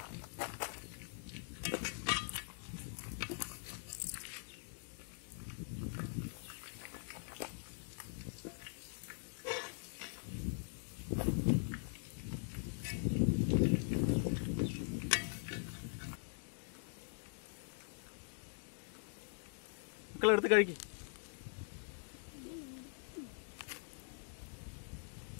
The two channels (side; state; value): right; silent; digital silence